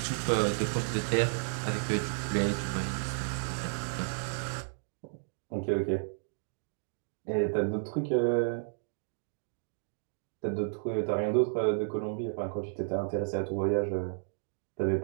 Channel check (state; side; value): silent; left; digital silence